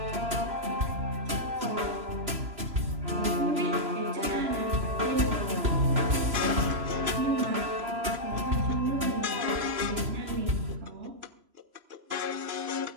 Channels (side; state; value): left; late; 2.9 ms